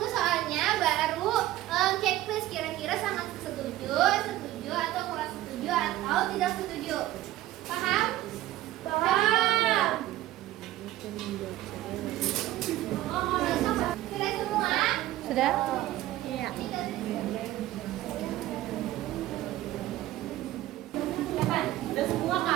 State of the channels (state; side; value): quieter; left; 15.0 dB